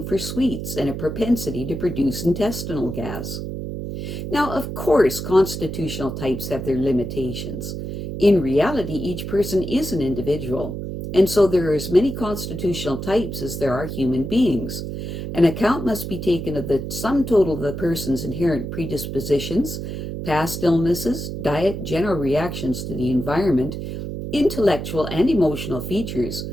for sweets and a propensity to produce intestinal gas. Now, of course, constitutional types have their limitations. In reality, each person is an individual, and so there are as many constitutional types as there are human beings. An account must be taken of the sum total of the person's inherent predispositions, past illnesses, diet, general reactions to the environment, intellectual and emotional features,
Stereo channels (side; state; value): right; noise; hum, 6 dB below the sound